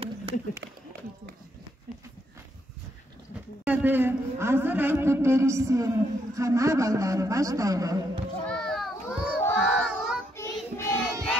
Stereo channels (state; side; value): normal; both; correlation 0.75